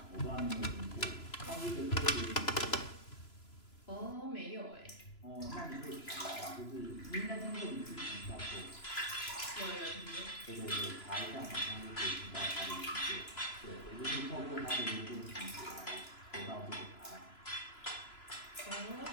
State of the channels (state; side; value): late; right; 3.0 ms